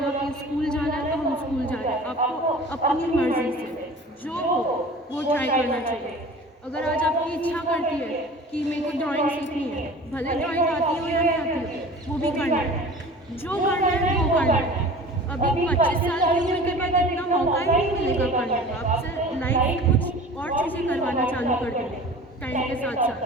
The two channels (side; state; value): both; normal; correlation 0.41